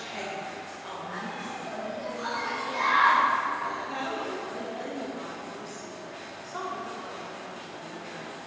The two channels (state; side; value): identical; both; correlation 1.00